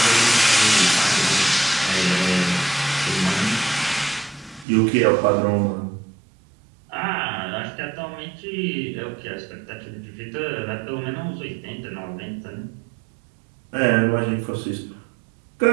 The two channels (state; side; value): drops out; left; at 4.7 s